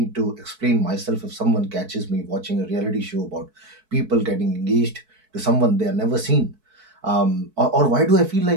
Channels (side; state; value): left; late; 4.6 ms